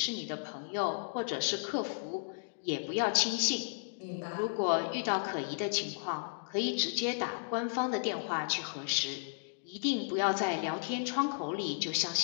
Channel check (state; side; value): silent; right; digital silence